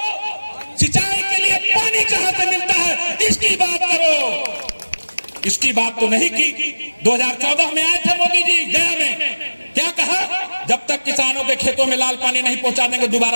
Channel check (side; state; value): both; inverted; correlation -1.00